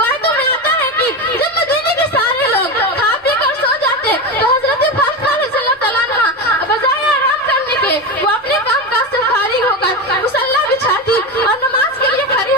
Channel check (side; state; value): both; normal; correlation 0.19